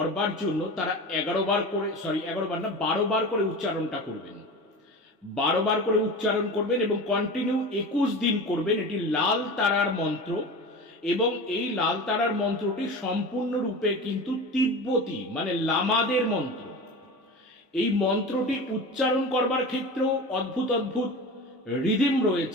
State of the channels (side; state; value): both; normal; correlation 0.31